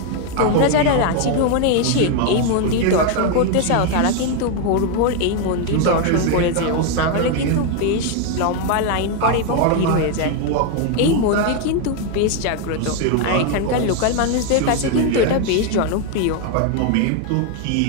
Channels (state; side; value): different; both; correlation 0.01